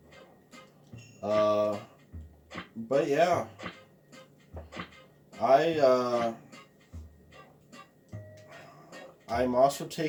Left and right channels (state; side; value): identical; both; correlation 1.00